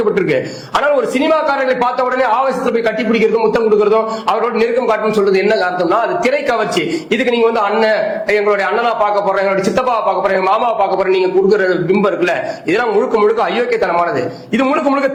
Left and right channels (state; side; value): identical; both; correlation 1.00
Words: ஆனால் ஒரு சினிமாக்காரர்களை பார்த்த உடனே ஆவேசத்துல போய் கட்டி பிடிக்கிறதும் முத்தம் கொடுக்கறதும் அவரோட நெருக்கம் காட்டணும் சொல்றது என்ன அர்த்தம்னா, அது திரை கவர்ச்சி. இதுக்கு நீங்க அண்ணன், எங்களுடைய அண்ணனா பார்க்க போறேன், எங்களுடைய சித்தப்பாவை பார்க்க போறேன், மாமாவை பார்க்க போறேன், நீங்க கொடுக்குற பிம்பம் இருக்குல்ல, இதெல்லாம் முழுக்க முழுக்க அயோக்கியத்தனமானது. இது முழுக்க முழுக்க